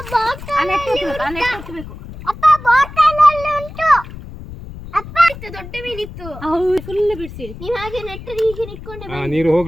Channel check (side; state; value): left; noise; rumble, 13 dB below the sound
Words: ದೊಡ್ಡ ಮೀನಿತ್ತು ಫುಲ್ ಬಿಡಿಸಿ ನೀವ್ ಹಾಗೆ ನೆಟ್ಟ ಹೀಗೆ ನಿಟ್ಕೊಂಡೆ ನೀರು